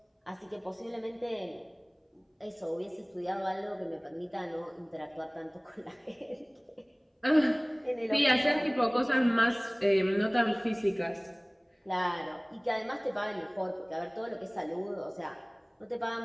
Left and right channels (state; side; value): identical; both; correlation 1.00